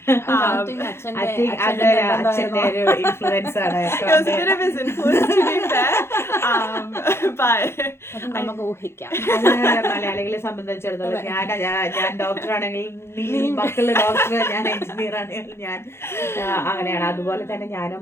I think അച്ഛൻ്റെ ഒരു ഇൻഫ്ലുവൻസ് ആണ്. It was a bit of his influence, to be fair. But നമുക്ക് ഊഹിക്കാം. മലയാളികളെ സംബന്ധിച്ചിടത്തോളം ഞാൻ ഡോക്ടറാണെങ്കിൽ നീ മക്കള് ഡോക്ടർ, ഞാൻ എഞ്ചിനീയർ ആണെങ്കിൽ ഞാൻ അങ്ങനെയാണ്. അതുപോലെ തന്നെ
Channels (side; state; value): right; late; 0.12 ms